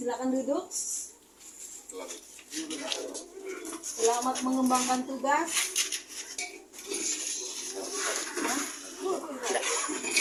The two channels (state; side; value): identical; both; correlation 1.00